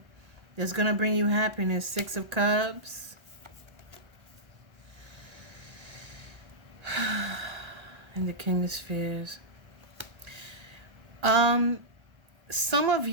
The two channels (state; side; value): late; left; 1.3 ms